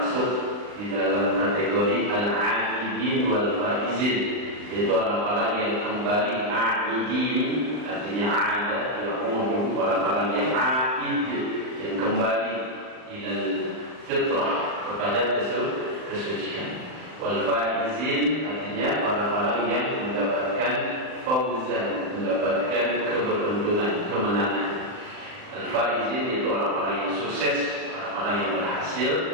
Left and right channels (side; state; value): left; late; 39 ms